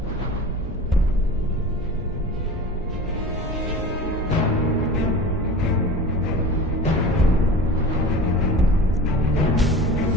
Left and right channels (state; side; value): normal; both; correlation 0.36